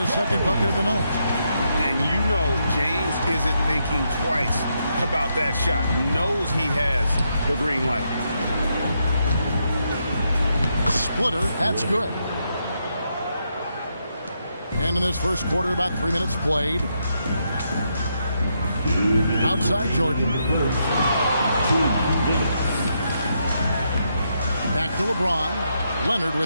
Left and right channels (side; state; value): both; inverted; correlation -0.80